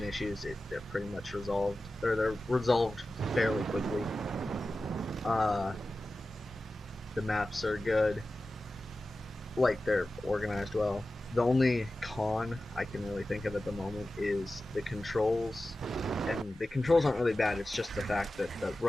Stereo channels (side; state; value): both; normal; correlation 0.94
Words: issues, they're pretty much resolved, or they're resolved fairly quickly. The maps are good, like they're organized well. The only con I can really think of at the moment is the controls, and the controls aren't really bad, it's just the fact that the